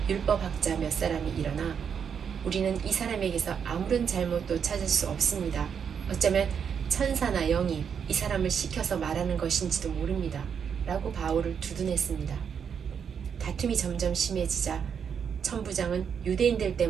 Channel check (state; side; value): quieter; left; 7.2 dB